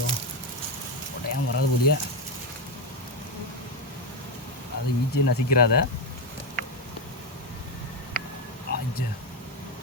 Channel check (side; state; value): both; normal; correlation 0.08